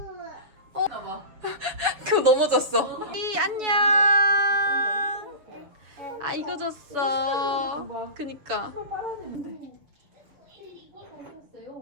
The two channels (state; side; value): late; left; 7.2 ms